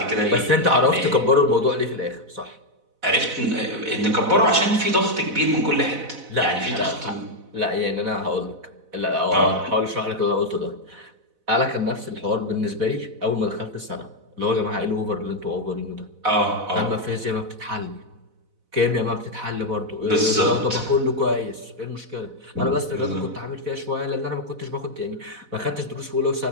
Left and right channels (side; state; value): left; late; 4.0 ms